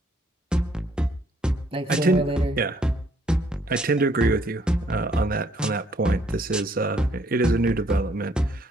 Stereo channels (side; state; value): both; normal; correlation 0.66